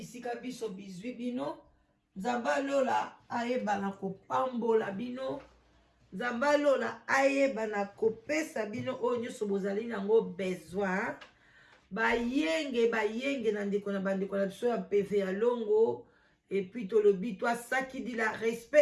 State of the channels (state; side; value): identical; both; correlation 1.00